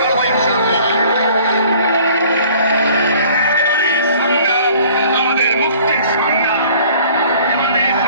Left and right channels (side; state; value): both; inverted; correlation -0.52